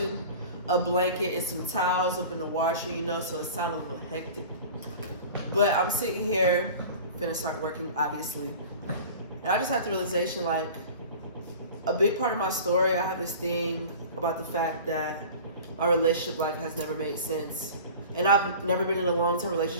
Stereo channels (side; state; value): both; inverted; correlation -0.39